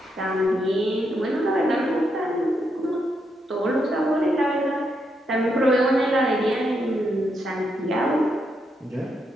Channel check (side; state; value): both; normal; correlation 0.80